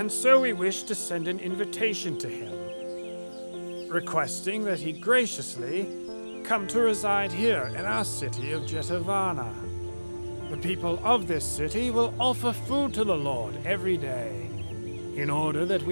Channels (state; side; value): inverted; both; correlation -1.00